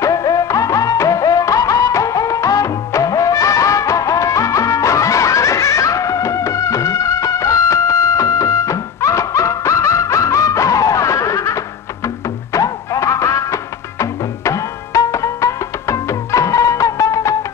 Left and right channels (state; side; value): quieter; right; 7.2 dB